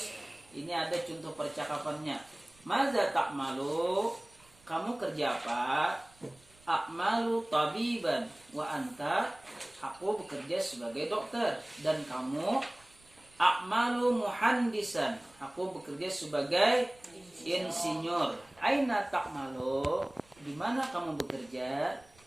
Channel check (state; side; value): noise; right; rumble, 29 dB below the sound